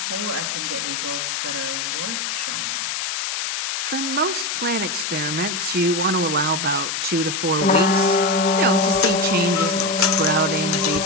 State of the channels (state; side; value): noise; left; hiss, 2 dB below the sound